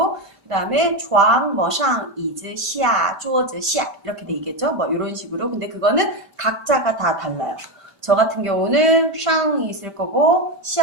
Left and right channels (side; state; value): left; late; 5.1 ms